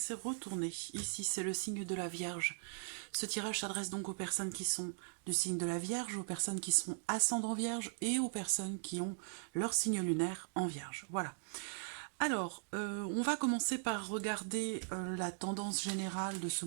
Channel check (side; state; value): left; silent; digital silence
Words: retournée. Ici, c'est le signe de la Vierge. Ce tirage s'adresse donc aux personnes qui sont du signe de la Vierge, aux personnes qui sont ascendant Vierge et aux personnes qui ont leur signe lunaire en Vierge. Voilà. Alors, on va commencer par regarder la tendance générale de ce